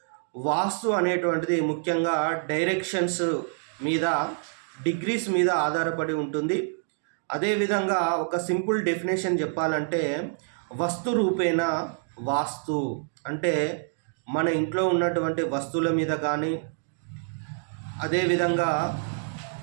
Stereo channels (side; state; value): left; silent; 60 dB below the other